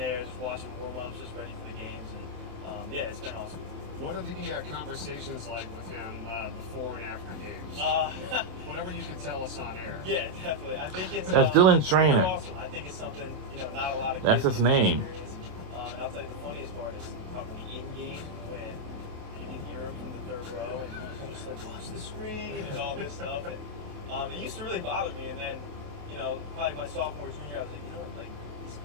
just watching warm-ups, just ready for the games. And yeah, it's been awesome. What are the conversations like with him before and after games? Whatever you can tell us on air. Yeah, definitely. I think it's That's Dylan's trainer. Awesome. I think it's something not a lot of. That's his name. And I'll tell you the funniest part is probably in game when you can hear him from the third row and he's just like, watch the screen and all this stuff. And it used to really bother me. And then probably my sophomore junior, I was like, he's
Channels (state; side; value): late; left; 28 ms